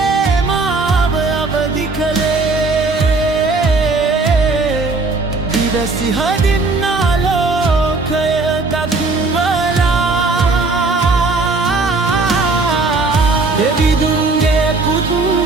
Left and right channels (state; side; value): quieter; left; 3.7 dB